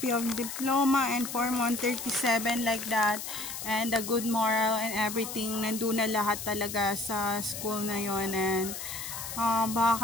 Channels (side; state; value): left; noise; hiss, 7 dB below the sound